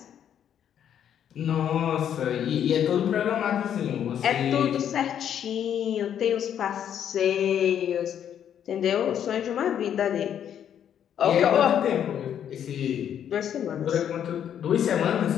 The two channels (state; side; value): quieter; right; 9.4 dB